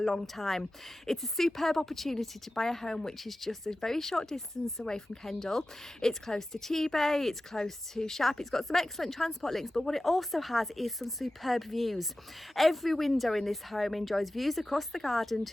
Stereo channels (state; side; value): normal; both; correlation 0.94